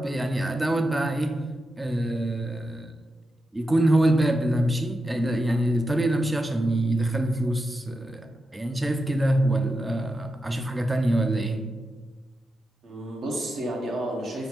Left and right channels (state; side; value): normal; both; correlation 0.88